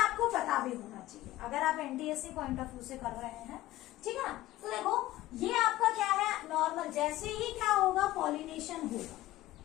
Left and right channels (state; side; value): quieter; right; 16.1 dB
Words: पता भी होना चाहिए अगर आप एनटीएससी पॉइंट ऑफ व्यू से कर रहे हैं। ठीक है ना, तो देखो ये आपका क्या है, नॉर्मल, जैसे ही क्या होगा, पॉलिनेशन होगा।